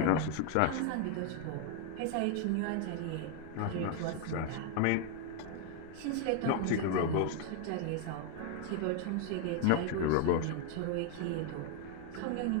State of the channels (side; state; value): both; different; correlation 0.00